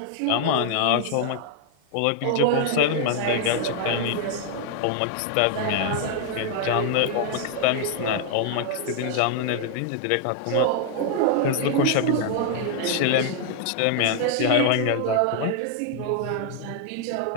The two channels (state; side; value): different; both; correlation 0.00